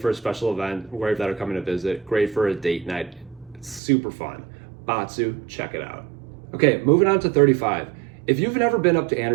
a special event, wherever that are coming to visit, great for a date night. It's super fun. Batsu, check it out. Okay, moving on to 35. If you've never been up to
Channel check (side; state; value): left; drops out; at 3.8 s